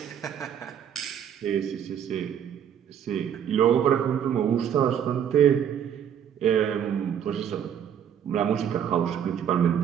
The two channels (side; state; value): left; quieter; 8.9 dB